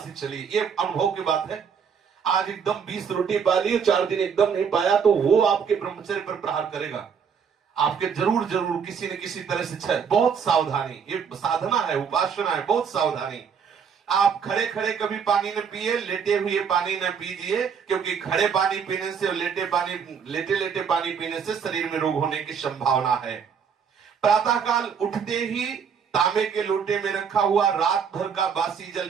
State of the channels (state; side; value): quieter; left; 6.8 dB